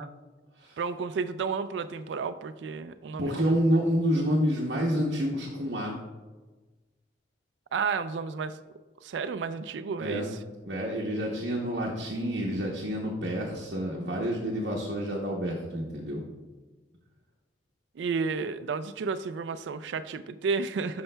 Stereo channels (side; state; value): both; normal; correlation 0.51